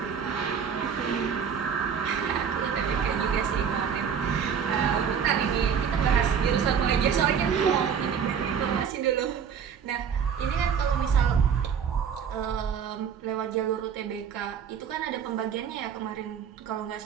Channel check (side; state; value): left; quieter; 7.4 dB